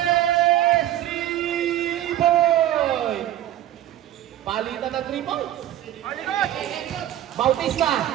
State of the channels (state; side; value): quieter; left; 12.8 dB